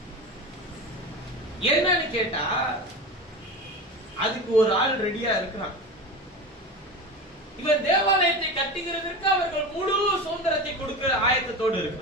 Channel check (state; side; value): normal; both; correlation 0.27